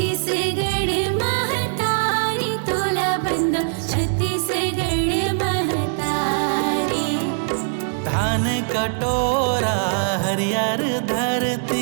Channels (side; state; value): left; silent; 65 dB below the other